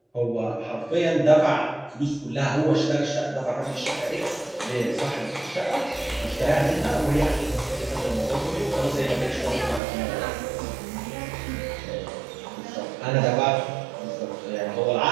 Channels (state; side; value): drops out; left; at 9.8 s